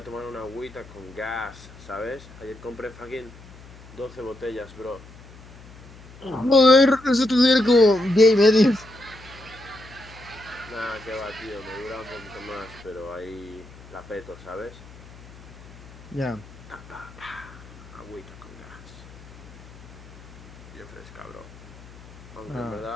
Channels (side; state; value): left; noise; hum, 19 dB below the sound